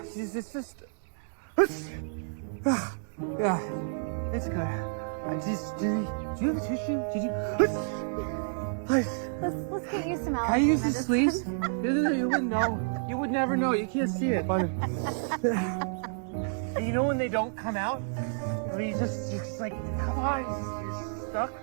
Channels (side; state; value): left; silent; digital silence